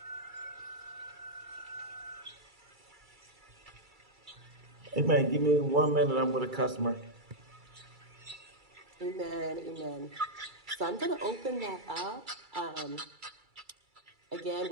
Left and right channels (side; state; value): left; late; 2.3 ms